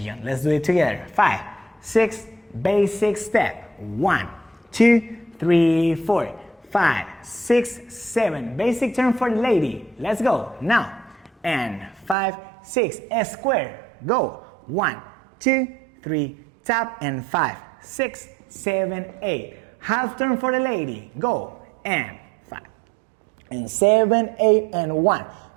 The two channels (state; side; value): drops out; left; at 12.2 s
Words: Let's do it together. 5, 6, basic step. 1, 2, 3, 4, 5, 6, 7. Basic turn for the lady. Let's go. Now. And 5, 6, a square. Go. 1, 2, 3, tap, and 5, 6, 7, 8. Half turn for the lady. Go. And 5, and 7, 8, and 1.